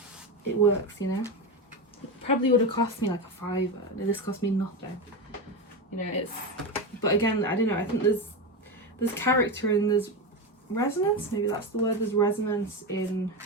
it works, you know. It probably would have cost me like a £5. This cost me nothing, you know. It's, but again, I don't know, I think there's character and there's resonance, maybe that's the word. There's resonance in,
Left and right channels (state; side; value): normal; both; correlation 0.17